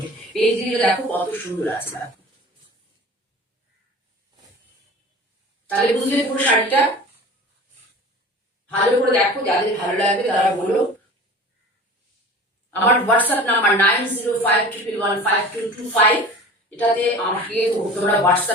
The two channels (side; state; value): both; normal; correlation 0.40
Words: এই দিকে দেখো কত সুন্দর আছে, দেখো। তাহলে বুঝলে পুরো শাড়িটা ভালো করে দেখো, যাদের ভালো লাগবে তারা বলো। আমার হোয়াটসঅ্যাপ নাম্বার 9052115225, এটাতে আমাকে তোমরা